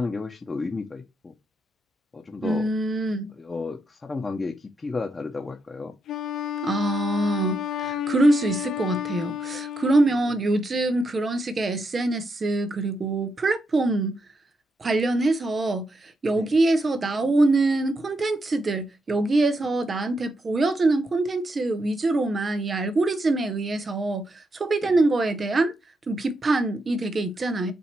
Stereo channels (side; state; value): both; normal; correlation 0.82